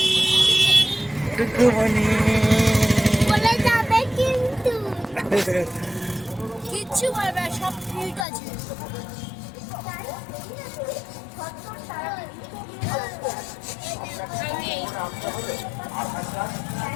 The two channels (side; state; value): right; drops out; at 8.2 s